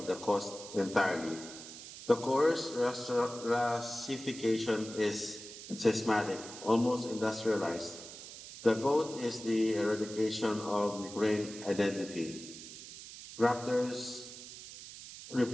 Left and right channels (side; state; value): right; noise; hiss, 13 dB below the sound